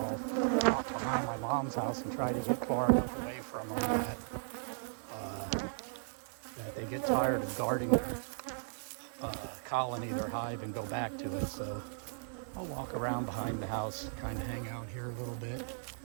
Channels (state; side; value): silent; left; digital silence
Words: walk behind my mom's house and try to get far enough away from them that they get tired of guarding their colony, their hive, and go back to it. So I'll walk around behind the house, kind of hang out here a little bit,